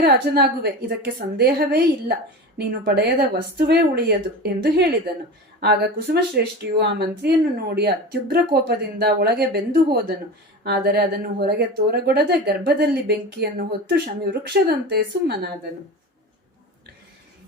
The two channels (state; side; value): normal; both; correlation 0.30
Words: ರಾಜನಾಗುವೆ, ಇದಕ್ಕೆ ಸಂದೇಹವೇ ಇಲ್ಲ. ನೀನು ಪಡೆಯದ ವಸ್ತುವೇ ಉಳಿಯದು ಎಂದು ಹೇಳಿದನು. ಆಗ ಕುಸುಮಶ್ರೇಷ್ಠಿಯು ಆ ಮಂತ್ರಿಯನ್ನು ನೋಡಿ ಅತ್ಯುಗ್ರ ಕೋಪದಿಂದ ಒಳಗೆ ಬೆಂದು ಹೋದನು. ಆದರೆ ಅದನ್ನು ಹೊರಗೆ ತೋರಗೊಡದೆ ಗರ್ಭದಲ್ಲಿ ಬೆಂಕಿಯನ್ನು ಹೊತ್ತು ಶಮಿ ವೃಕ್ಷದಂತೆ ಸುಮ್ಮನಾದನು.